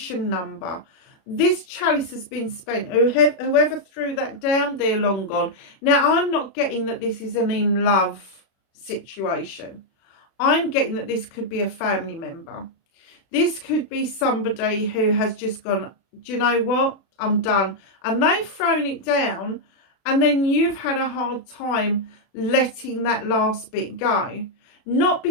number. This chalice has been spent. Whoever threw that down, they're long gone. Now, I'm not getting that this is an in love situation. I'm getting that this could be a family member. This could be somebody who has just gone, do you know what? I'm done. And they've thrown it down, and then you've had a hard time letting that last bit go. Not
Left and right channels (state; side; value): late; right; 36 ms